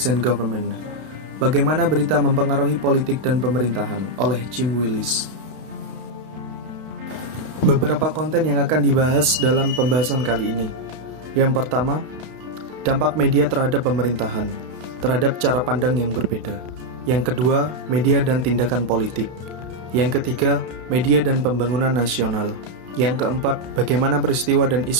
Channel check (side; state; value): left; late; 32 ms